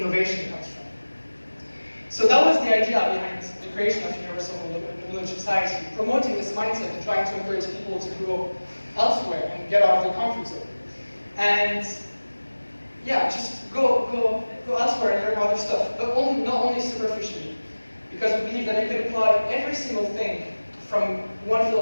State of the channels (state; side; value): inverted; both; correlation -1.00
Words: comes from. So that was the idea behind the creation of Universal Knowledge Society, promoting this mindset and trying to encourage people to grow elsewhere and get out of their comfort zone. And yeah, just go elsewhere and learn other stuff, but not only superficially, because we believe that you can apply every single thing from one